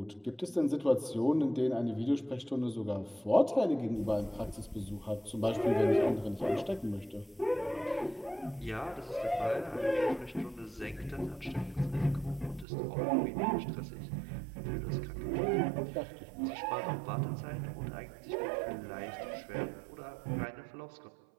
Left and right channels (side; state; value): left; drops out; at 12.7 s